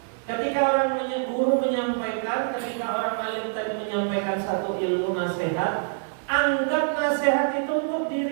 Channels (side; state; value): left; silent; digital silence